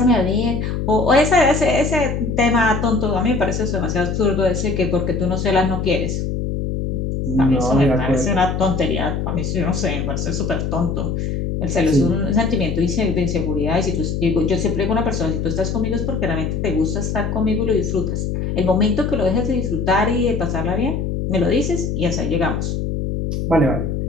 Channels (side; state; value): left; noise; hum, 2 dB below the sound